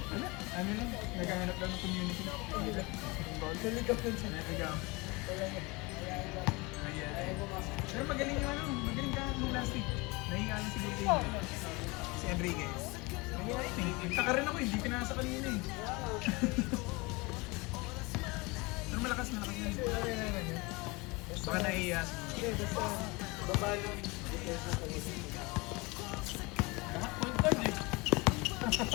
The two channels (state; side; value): quieter; right; 25.5 dB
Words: Ano lang, naghahanap lang ng community. Naligaw. Mayayain. Pero magaling yung magaling ka nung last week. Nahiya lang siguro yun. Si Enrique. Mayayain eh. Nagtaka rin ako, hindi pinasa kanina eh. Pero malakas yun. Baka naiiya. Hindi, basta baba ng defense ng pag-isip. Point guard eh.